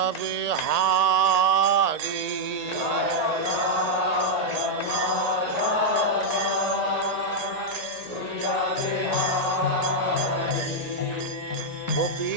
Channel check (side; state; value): left; late; 1.8 ms